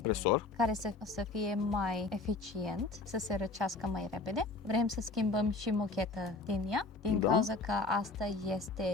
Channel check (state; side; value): quieter; right; 3.6 dB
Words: care să fie mai eficient, să se răcească mai repede. Vrem să schimbăm și mocheta din ea, din Da. cauza că asta